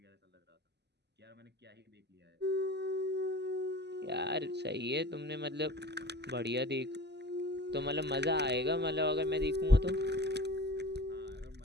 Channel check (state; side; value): late; left; 0.50 ms